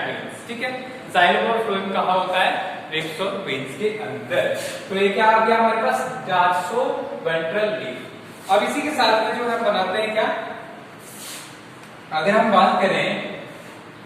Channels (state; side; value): identical; both; correlation 1.00